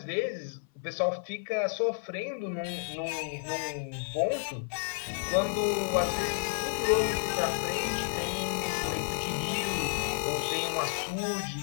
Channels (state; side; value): silent; right; 57 dB below the other